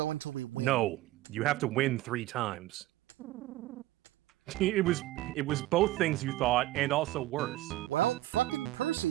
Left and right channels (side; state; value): left; quieter; 16.2 dB